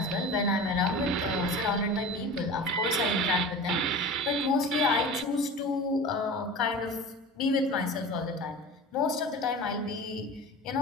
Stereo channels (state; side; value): normal; both; correlation 0.35